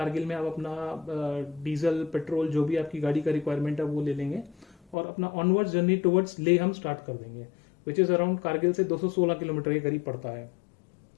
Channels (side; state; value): right; drops out; at 5.0 s